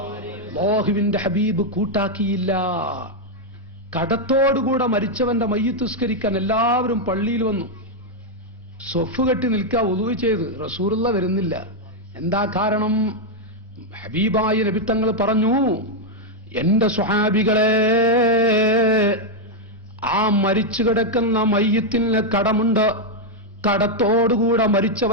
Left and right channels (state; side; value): normal; both; correlation 0.00